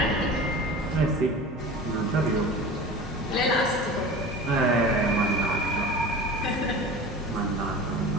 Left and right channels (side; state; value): both; normal; correlation 0.36